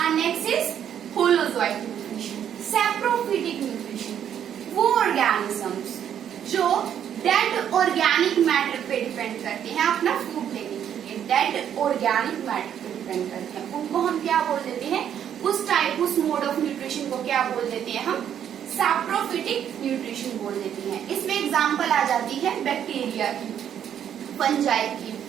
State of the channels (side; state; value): left; quieter; 9.4 dB